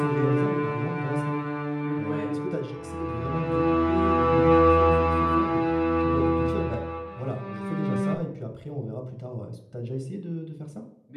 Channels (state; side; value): identical; both; correlation 1.00